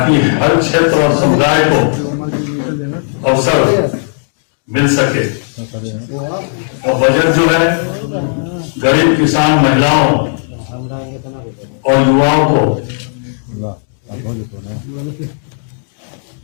हर क्षेत्र और समुदाय को अवसर मिल सके। और बजट जो है गरीब किसान, महिलाओं और युवाओं को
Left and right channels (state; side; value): silent; right; digital silence